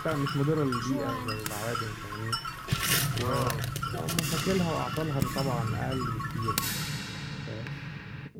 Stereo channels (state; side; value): identical; both; correlation 1.00